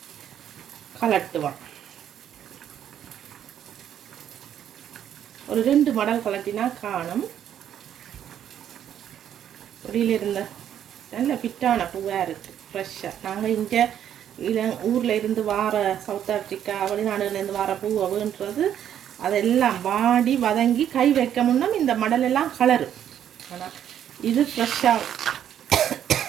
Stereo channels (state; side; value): quieter; left; 10.0 dB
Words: கலட்டுவோம். ஒரு 2 மடல் கலட்டினா காணும். வெளியில் இருந்த நல்ல ஃபிட்டான பூவாக இருக்குது, ஃப்ரெஷ்ஷாக. நாங்கள் இங்கே ஊரில் இருந்து வார சவுத் ஆஃப்ரிக்கா வெளிநாடுலேருந்து வார பூவுன்றது அதெல்லாம் வாடி வதங்கி கை வைக்க முன்னும் இந்த மடலெல்லாம் கலரு. ஆனால் இது ஃப்ரெஷ்ஷாக